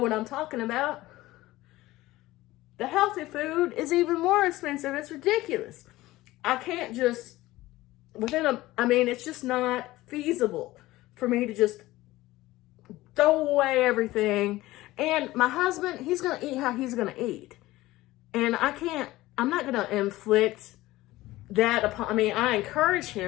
I'm talking about. The healthy food is even more expensive. It's ridiculous. I can't just, it's just not feasible for me to just throw away everything. And my husband, he's going to eat how he's going to eat. And I'm not going to inflict that upon, I encourage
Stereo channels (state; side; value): quieter; right; 17.7 dB